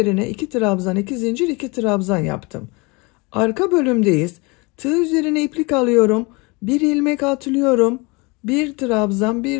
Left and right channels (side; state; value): right; quieter; 27.2 dB